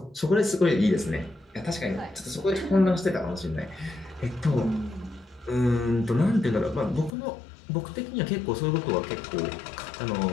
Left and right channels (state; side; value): drops out; right; at 7.1 s